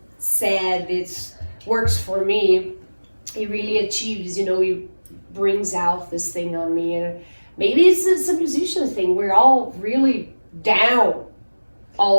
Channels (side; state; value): both; inverted; correlation -1.00